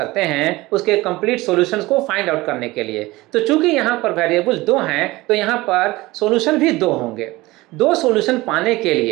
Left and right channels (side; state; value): left; quieter; 20.1 dB